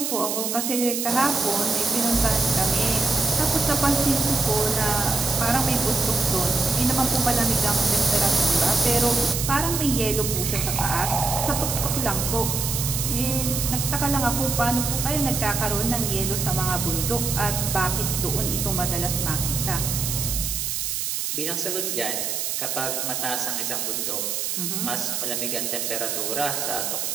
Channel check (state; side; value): noise; right; hiss, 1 dB below the sound